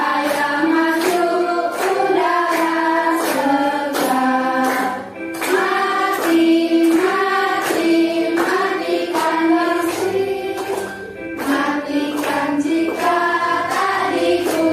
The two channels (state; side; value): identical; both; correlation 1.00